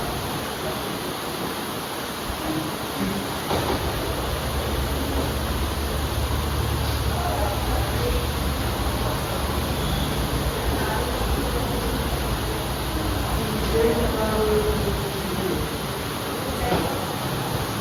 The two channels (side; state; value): both; identical; correlation 1.00